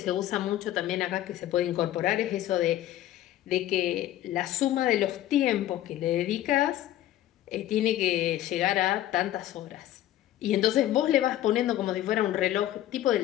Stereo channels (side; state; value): right; quieter; 13.3 dB